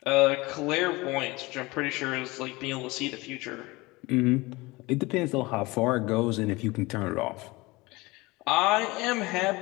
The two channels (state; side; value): quieter; right; 22.6 dB